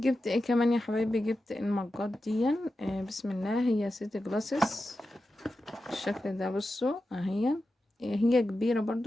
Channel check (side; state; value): both; normal; correlation 0.91